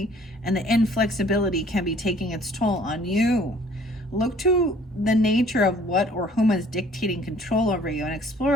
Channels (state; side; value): normal; both; correlation 0.55